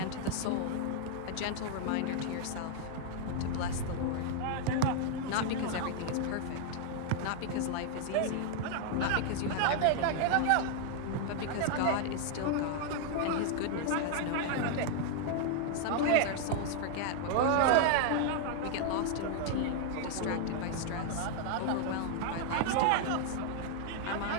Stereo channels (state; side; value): different; both; correlation 0.00